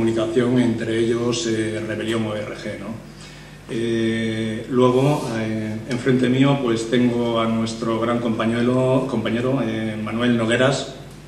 entre ellos Rebelión ORG, ¿no? Luego, enfrente mío, pues tengo a nuestro gran compañero Manuel Nogueras,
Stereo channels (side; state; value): both; identical; correlation 1.00